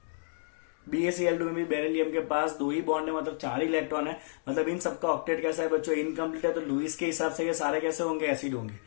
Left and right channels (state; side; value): silent; right; digital silence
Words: BaCl2 में भी बेरिलियम के पास 2 ही बॉन्ड है, मतलब 4 इलेक्ट्रॉन है। मतलब इन सबका ऑक्टेट कैसा है बच्चों? इनकम्प्लीट है। तो लुईस के हिसाब से ये सारे कैसे होंगे? एसिड होंगे।